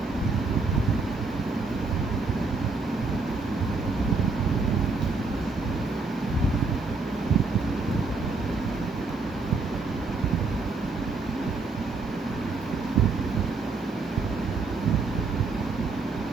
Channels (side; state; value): left; quieter; 3.9 dB